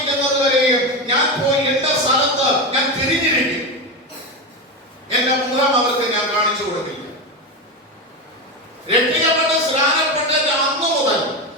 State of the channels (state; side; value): normal; both; correlation 0.16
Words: വരെയും ഞാൻ പോയി എന്റെ സ്ഥലത്ത് ഞാൻ തിരിഞ്ഞിരിക്കും, എന്റെ മുഖം അവർക്ക് ഞാൻ കാണിച്ചു കൊടുക്കില്ല. രക്ഷിക്കപ്പെട്ട് സ്നാനപ്പെട്ടിട്ട് അന്ന് മുതൽ